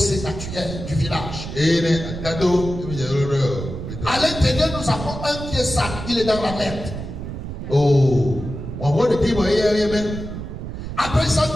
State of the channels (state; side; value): noise; right; rumble, 8 dB below the sound